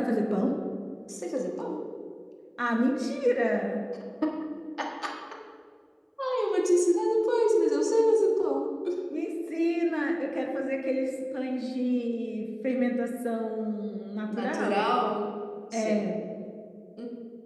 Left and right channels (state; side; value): identical; both; correlation 1.00